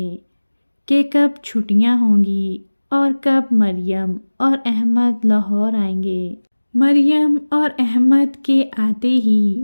کہ کب چھٹیاں ہوں گی اور کب مریم اور احمد لاہور آئیں گے۔ مریم اور احمد کے آتے ہی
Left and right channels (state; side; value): inverted; both; correlation -1.00